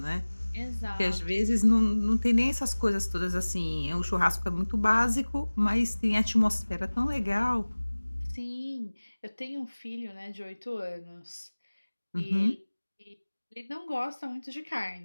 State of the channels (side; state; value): both; inverted; correlation -1.00